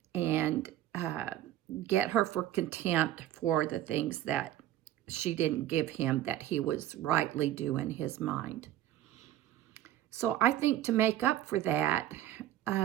and get her for contempt for the things that she didn't give him that he was rightly due in his mind. So I think to make up for that,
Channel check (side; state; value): left; quieter; 12.9 dB